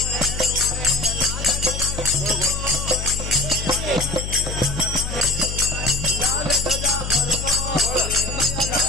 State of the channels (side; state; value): left; noise; hum, 6 dB below the sound